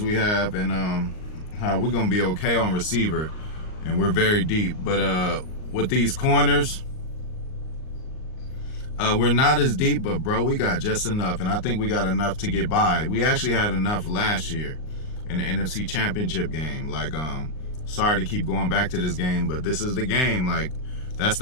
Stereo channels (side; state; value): right; late; 38 ms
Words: we have and how we're gonna be okay on receiver, and we're very deep. But with these corners, we're not as deep, but bro, we got just enough, and I think we got enough to get by. We actually had enough last year in the NFC Championship game. Like, sorry to keep going back to this game, but this is the game. Like, that's